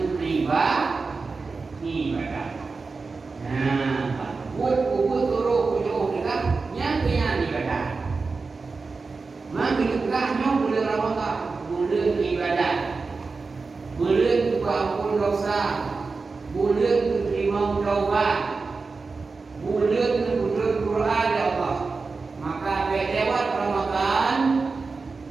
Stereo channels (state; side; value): quieter; left; 4.3 dB